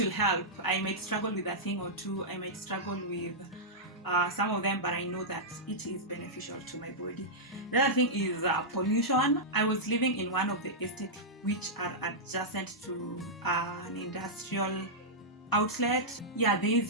help. I might struggle with a thing or two. I might struggle with some of them, but I know that it is beneficial to my body. The other thing is pollution. I was living in one of the estates which are adjacent to an industrial outlet. Yeah, there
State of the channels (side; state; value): both; normal; correlation -0.10